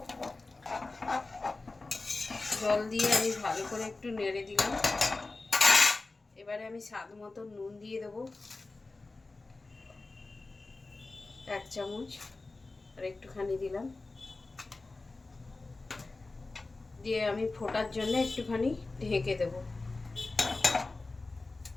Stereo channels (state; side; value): quieter; right; 3.4 dB